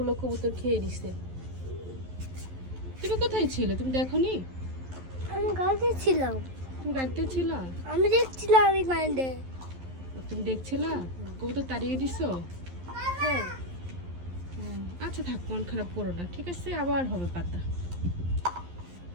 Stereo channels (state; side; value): late; left; 11 ms